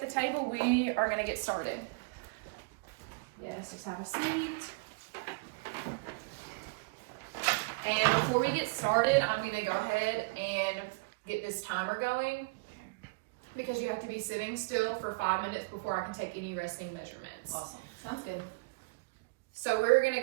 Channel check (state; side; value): quieter; left; 30.7 dB